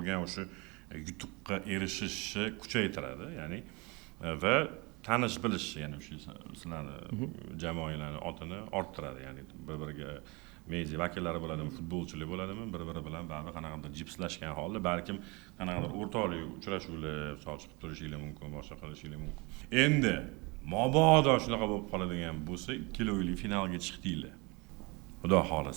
o'sha yutuqqa erishishni kuchaytiradi. Ya'ni va tanish bilish, ya'ni o'sha sizlarni jamoalarning otini orttiradi. Ya'ni bir-biriga media vakillari bo'ladimi, futbolchilar bo'ladimi, bir-biri bilan baribir qanaqadir jipslashgan holda balkim qanaqadir o'rtoqlik uchrashuvlar chiqib turishinglar mumkin, boshqa qilishinglar mumkin. Endi mabodo shunaqa bo'lib qoladigan bo'lsa, ikkilovli finalga chiqdinglar. Xudo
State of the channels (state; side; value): quieter; left; 27.2 dB